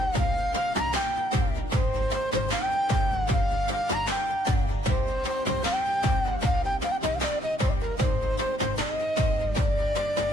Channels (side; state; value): both; normal; correlation 0.70